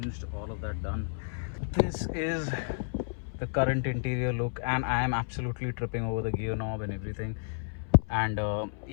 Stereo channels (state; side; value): silent; right; 57 dB below the other